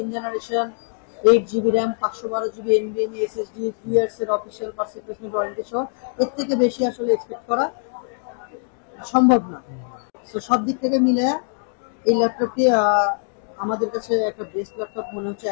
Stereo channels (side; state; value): right; silent; 57 dB below the other